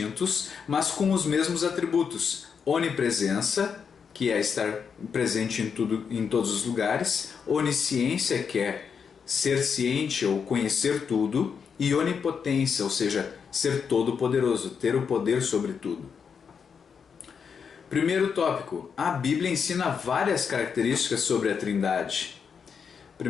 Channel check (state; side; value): quieter; right; 6.5 dB